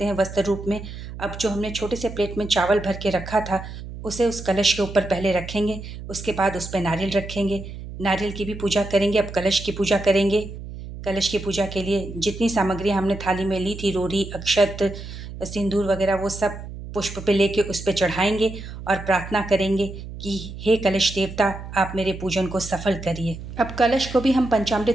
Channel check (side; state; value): right; noise; hum, 11 dB below the sound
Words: हैं वस्त्र रूप में। अब जो हमने छोटे से प्लेट में चावल भर के रखा था उसे उस कलश के ऊपर पहले रखेंगे, उसके बाद उस पर नारियल रखेंगे। नारियल की भी पूजा करेंगे। अब कलश की पूजा करेंगे। कलश की पूजा के लिए जितनी सामग्री हमने थाली में ली थी, रोरी, अक्षत, सिंदूर वगैरह, वो सब पुष्प पे लेके उस पे चढ़ाएंगे और प्रार्थना करेंगे कि हे कलश देवता, आप मेरे पूजन को सफल करिए। अब कलश को भी हम